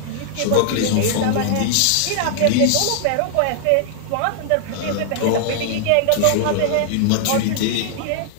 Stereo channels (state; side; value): different; both; correlation -0.01